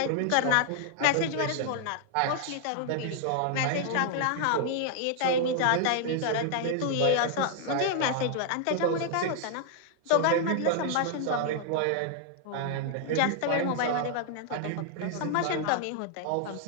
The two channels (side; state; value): both; different; correlation 0.00